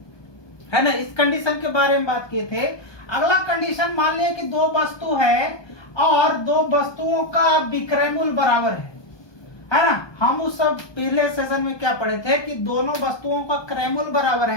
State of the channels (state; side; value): late; right; 1.2 ms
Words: है ना। इस कंडीशन के बारे में बात किए थे। अगला कंडीशन मान लिया कि दो वस्तु है और दो वस्तुओं का विक्रय मूल्य बराबर है ना। हम उस सब पहले सेशन में क्या पढ़े थे कि दोनों वस्तुओं का क्रय मूल्य बराबर